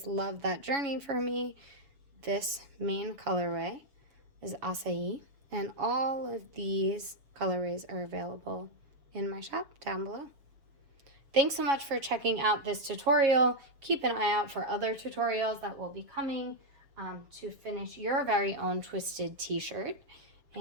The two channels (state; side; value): late; left; 7.0 ms